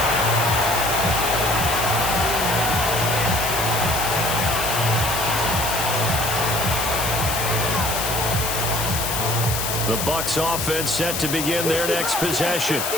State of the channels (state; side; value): noise; left; hiss, 2 dB below the sound